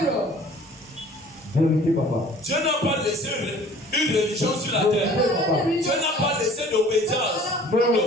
Vérité, papa. Dieu n'a pas laissé une religion sur la terre. Dieu n'a pas laissé d'obédience.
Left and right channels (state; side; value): normal; both; correlation 0.50